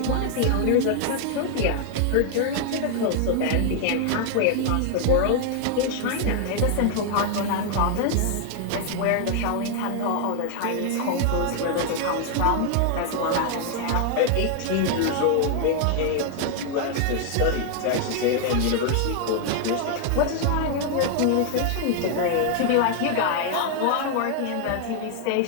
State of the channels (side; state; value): both; different; correlation 0.00